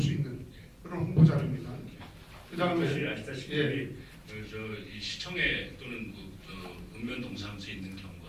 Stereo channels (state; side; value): identical; both; correlation 1.00